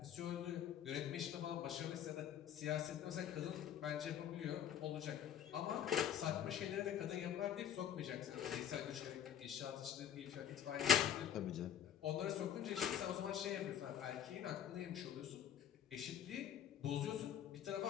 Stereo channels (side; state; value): right; quieter; 9.2 dB